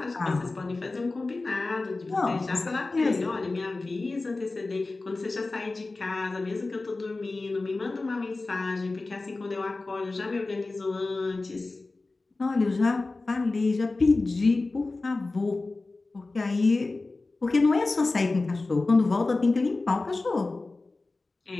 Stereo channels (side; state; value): right; quieter; 3.4 dB